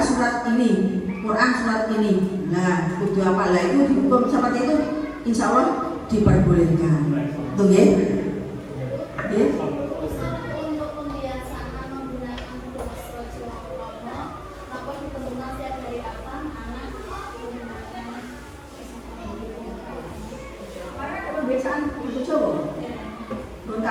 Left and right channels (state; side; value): identical; both; correlation 1.00